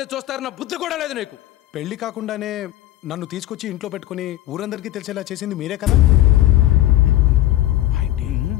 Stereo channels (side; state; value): right; quieter; 14.7 dB